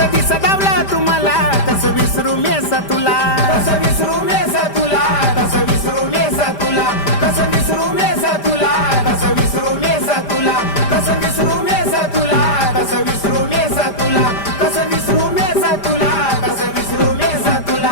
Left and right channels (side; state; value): right; late; 5.0 ms